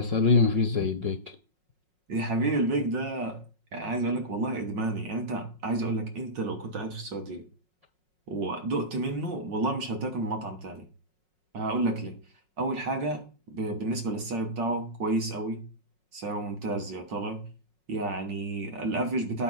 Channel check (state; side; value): late; left; 5.5 ms